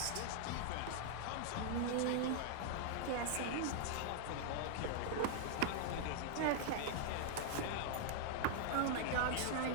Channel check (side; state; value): both; different; correlation -0.01